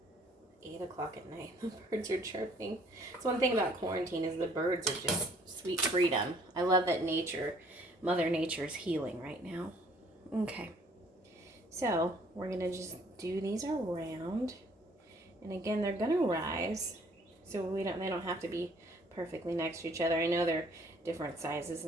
8 o'clock at night. The birds are chirping. So one thing about quarantine is the birds are just sweet freedom. I love that Mother Nature is healing right now. Okay. So we're going to just do these around. And again, they're going to rise. So they don't have to be perfectly next to each other. I know they're different sizes,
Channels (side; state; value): both; normal; correlation 0.59